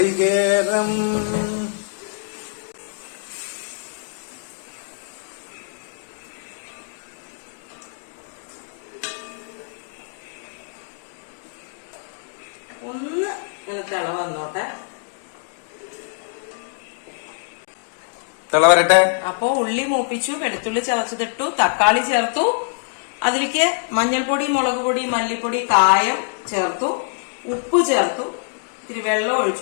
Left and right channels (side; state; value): right; silent; digital silence